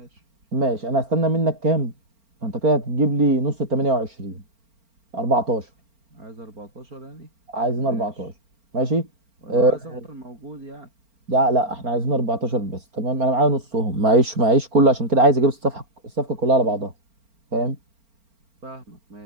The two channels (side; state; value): left; late; 4.4 ms